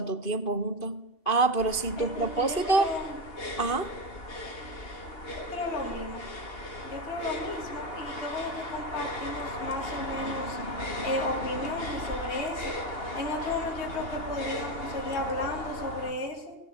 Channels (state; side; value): late; right; 2.5 ms